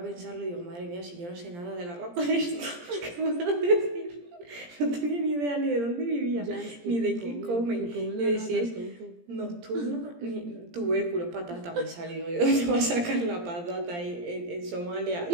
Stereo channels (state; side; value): late; left; 17 ms